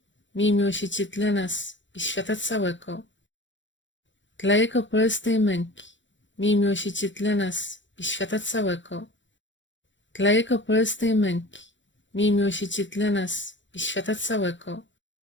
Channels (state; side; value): late; right; 0.54 ms